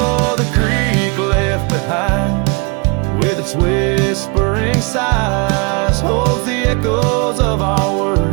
the creek left behind, with its whispering sighs, holds the echoes of our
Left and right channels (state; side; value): quieter; left; 31.2 dB